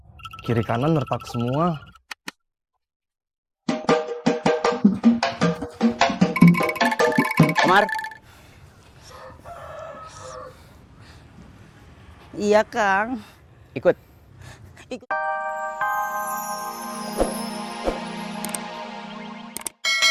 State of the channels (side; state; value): both; identical; correlation 1.00